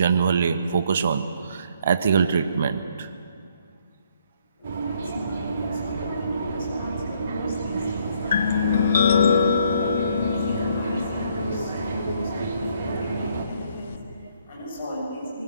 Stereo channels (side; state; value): both; inverted; correlation -0.68